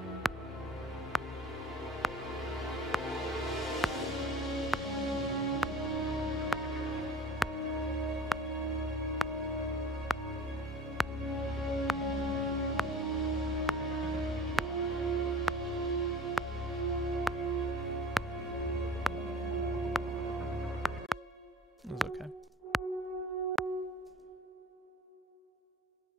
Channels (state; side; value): normal; both; correlation 0.44